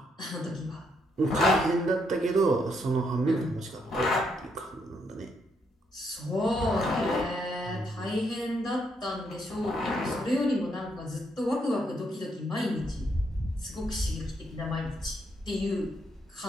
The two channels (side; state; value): both; normal; correlation 0.76